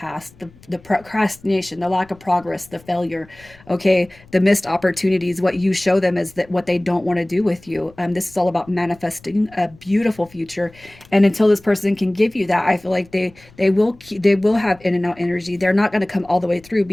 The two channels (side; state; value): left; noise; rumble, 26 dB below the sound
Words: the procrastination, the lack of progress, the failure, okay, the missed opportunities. What you show them is that what they don't want to do with you. This is all about manifesting a beautiful future, and until this person can give you that, I feel like they will have in and out energy. They're not going to come all the way through